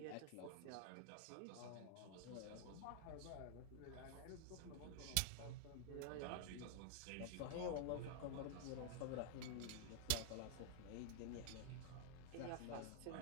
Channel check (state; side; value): different; both; correlation -0.01